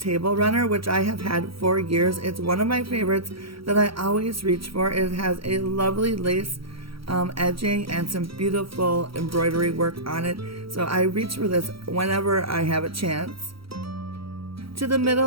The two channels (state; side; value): late; left; 0.75 ms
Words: runner, which I have had for years. It's one of my favorites that I always reach for. It has a lovely lace edging and some beautiful embroidery work on it, so I reach for this whenever I have a chance. To the